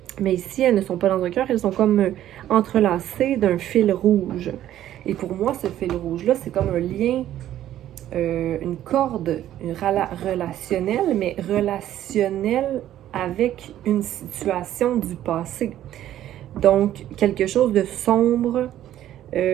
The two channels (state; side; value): quieter; left; 12.3 dB